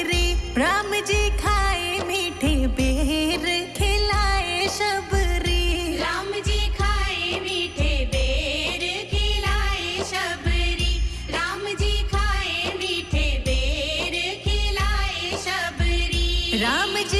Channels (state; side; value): identical; both; correlation 1.00